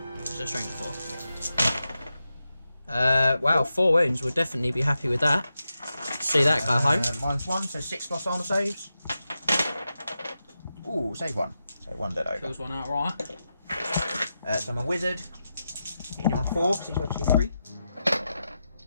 So strength 4. Wow, 4 wounds. We'll definitely be happy with that. See that go home. -1, so 6+ armor saves. Ooh, save 1. So 1 dead over. Kills one outright. So I'm a wizard. Hitting you on 4, because he's got 2, 3.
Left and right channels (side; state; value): both; inverted; correlation -0.89